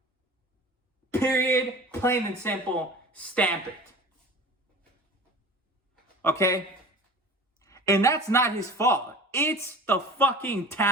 Period. Plain and simple. Stamp it. Okay? And that's not his fault. It's the fucking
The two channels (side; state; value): both; normal; correlation 0.39